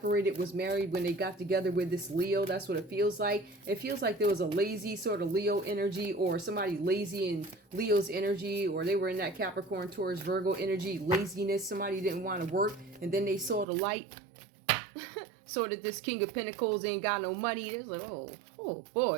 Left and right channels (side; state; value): left; drops out; at 13.7 s